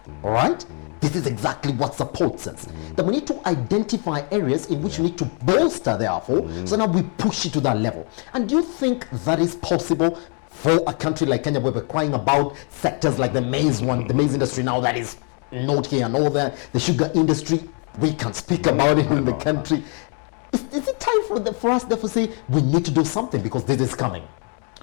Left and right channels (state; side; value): quieter; right; 39.6 dB